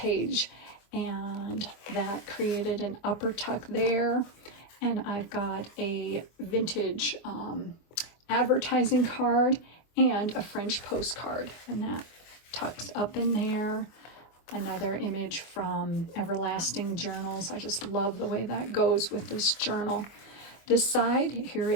and that created an upper tuck there. And I've got a vintage advertising card and a French postcard, and that tucks up in there. Another image from Everlasting Journals. I just love the way that goes with this journal. This side here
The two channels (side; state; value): right; late; 24 ms